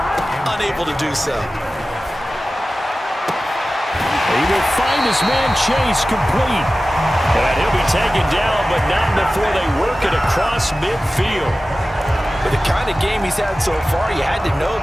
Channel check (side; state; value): both; normal; correlation 0.96